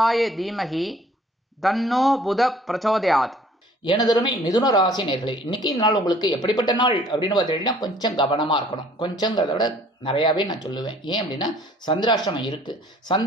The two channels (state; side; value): normal; both; correlation 0.55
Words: தீமகி தன்னோ புத பிரச்சோதயாத். எனதருமை மிதுன ராசி நேர்களே, இன்னைக்கு நாள் உங்களுக்கு எப்படிப்பட்ட நாள் அப்படின்னு பார்த்தீங்கன்னா கொஞ்சம் கவனமா இருக்கணும். கொஞ்சங்கிறத விட நிறையாவே நான் சொல்லுவேன். ஏன் அப்படின்னா சந்திராஷ்டமம் இருக்கு.